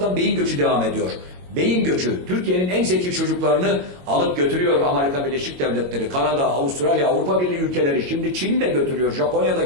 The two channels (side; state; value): left; late; 22 ms